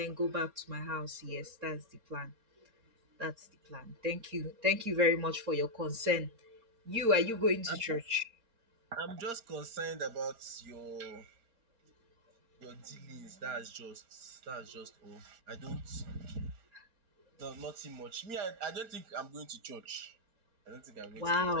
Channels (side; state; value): left; late; 4.3 ms